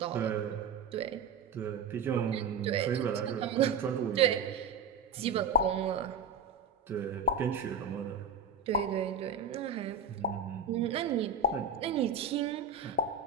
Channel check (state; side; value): quieter; left; 5.1 dB